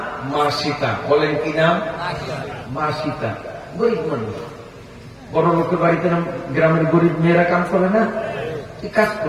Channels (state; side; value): identical; both; correlation 1.00